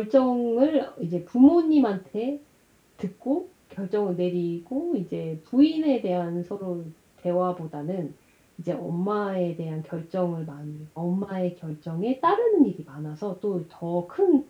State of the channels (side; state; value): both; identical; correlation 1.00